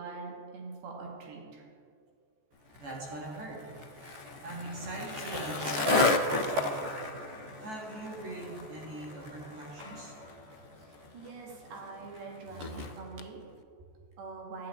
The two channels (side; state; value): left; late; 14 ms